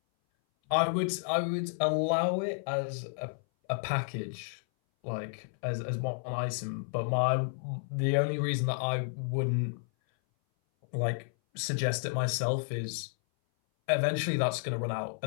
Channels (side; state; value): right; silent; 57 dB below the other